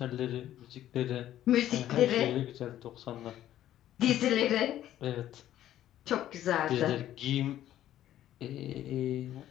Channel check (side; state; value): right; quieter; 12.4 dB